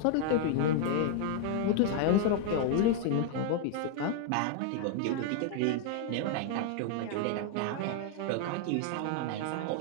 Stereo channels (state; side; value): different; both; correlation 0.00